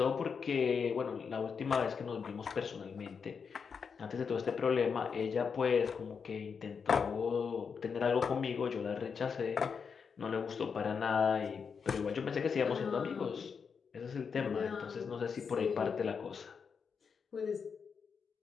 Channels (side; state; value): right; quieter; 6.0 dB